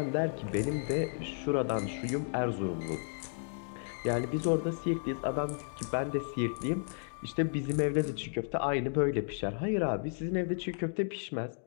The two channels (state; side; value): silent; right; digital silence